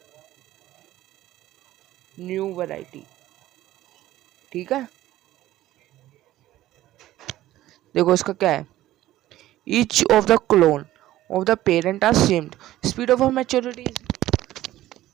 new variety, ठीक है। देखो इसका क्या है, each of the clone of the parent are same, speed of maturity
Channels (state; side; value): quieter; left; 14.8 dB